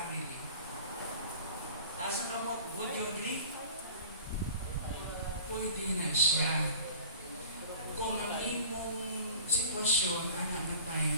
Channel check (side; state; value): both; inverted; correlation -0.42